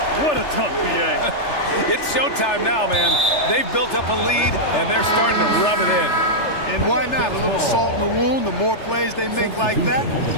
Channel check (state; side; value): late; right; 3.4 ms